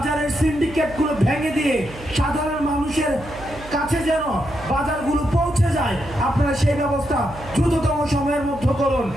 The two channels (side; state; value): right; noise; hum, 16 dB below the sound